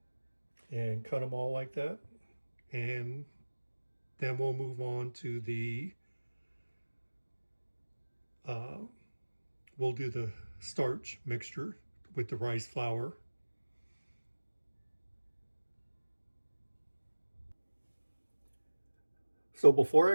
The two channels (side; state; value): both; inverted; correlation -1.00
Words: and cut them all like that, and then we'll move on to the we'll do the starch mixture with the rice flour. So before